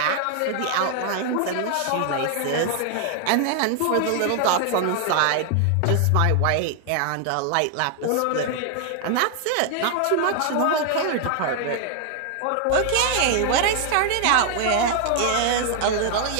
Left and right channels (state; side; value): different; both; correlation 0.00